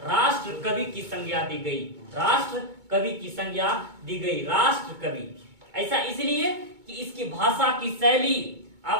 राष्ट्र कवि की संज्ञा दी गई, राष्ट्र कवि की संज्ञा दी गई, राष्ट्र कवि। ऐसा इसलिए कि इसकी भाषा की शैली,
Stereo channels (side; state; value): left; late; 2.2 ms